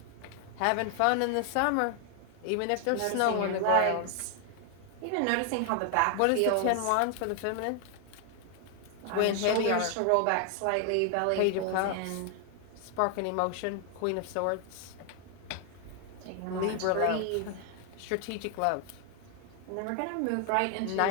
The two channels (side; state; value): both; different; correlation 0.00